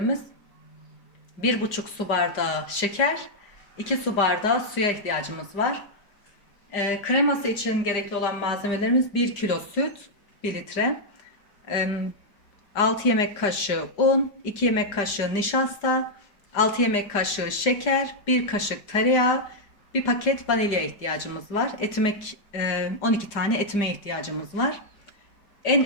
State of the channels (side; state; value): right; late; 5.0 ms